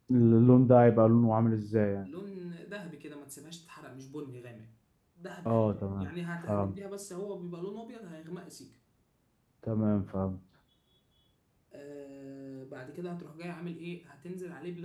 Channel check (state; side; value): identical; both; correlation 1.00